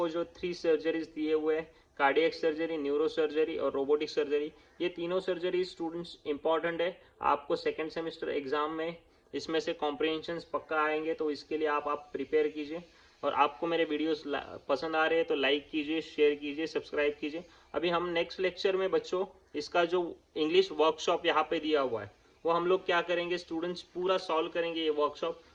जो 3 सर्जरीज दिए हुए हैं, कार्डियक सर्जरी, न्यूरो सर्जरी और रोबोटिक सर्जरी, ये तीनों सर्जरी स्टूडेंट्स इंपॉर्टेंट है आपको सेकेंड सेमेस्टर एग्जाम में। इसमें से कॉम्प्रिहेंशन पक्का आएंगे, तो इसके लिए आप प्रिपेयर कीजिए। और आपको मेरे वीडियोस पसंद आ रहे हैं तो लाइक कीजिए, शेयर कीजिए, सब्सक्राइब कीजिए। अभी हम नेक्स्ट लेक्चर में बच्चों इसका जो इंग्लिश वर्कशॉप यहाँ पे दिया हुआ है वो हम लोग क्या करेंगे, स्टूडेंट्स पूरा सॉल्व करेंगे ये वर्कशॉप।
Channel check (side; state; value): both; identical; correlation 1.00